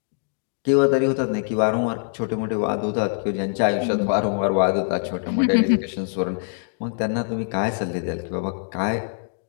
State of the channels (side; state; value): right; silent; digital silence